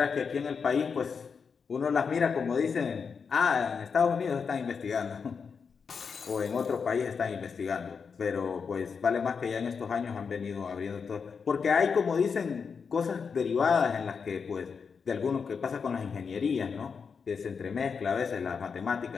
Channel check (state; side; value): quieter; right; 5.8 dB